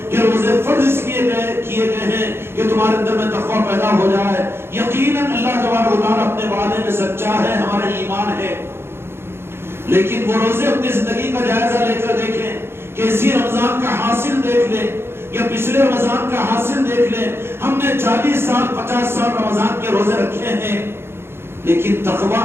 کہ روزے فرض کیے گئے ہیں کہ تمہارے اندر میں تقوی پیدا ہو جائے۔ یقیناً اللہ تبارک و تعالیٰ اپنے وعدے میں سچا ہے، ہمارا ایمان ہے، لیکن وہ روزے اپنی زندگی کا جائزہ لے کر دیکھیں کہ اسی رمضان کا حاصل دیکھ لیں یا پچھلے رمضان کا حاصل دیکھ لیں. ہم نے 40 سال 50 سال رمضان کے روزے رکھے ہیں، لیکن تقویٰ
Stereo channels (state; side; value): late; left; 0.12 ms